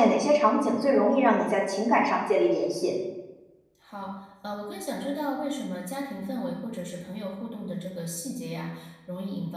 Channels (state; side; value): identical; both; correlation 1.00